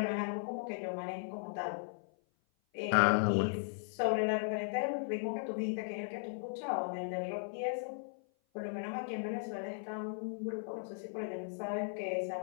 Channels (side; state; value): right; silent; 53 dB below the other